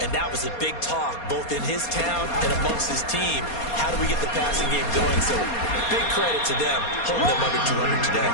And that was a big talk, both in his town and amongst his team. How do we get the passing game going? So big credit to them, holding them under 200 today.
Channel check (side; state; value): right; late; 4.2 ms